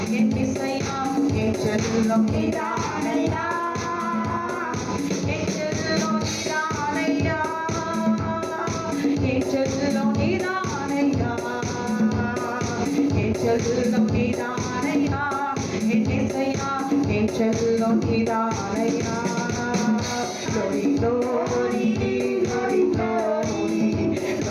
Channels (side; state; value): both; identical; correlation 1.00